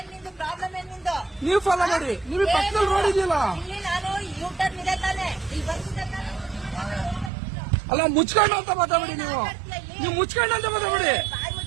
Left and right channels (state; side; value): drops out; left; at 7.3 s